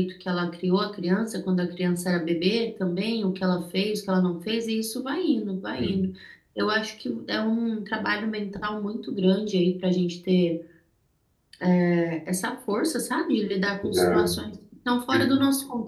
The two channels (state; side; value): identical; both; correlation 1.00